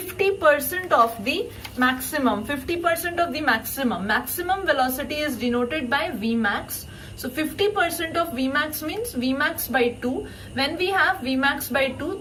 of the maximum. 50% of the maximum. Maximum velocity is denoted by Vmax. So 50% of Vmax means Vmax by 2. When we have Vmax by 2,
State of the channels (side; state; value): both; identical; correlation 1.00